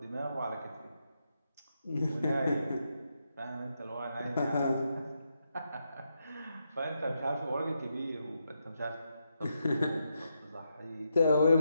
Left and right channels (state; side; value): inverted; both; correlation -0.83